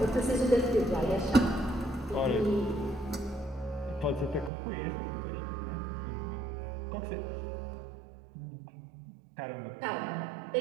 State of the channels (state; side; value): drops out; left; at 4.5 s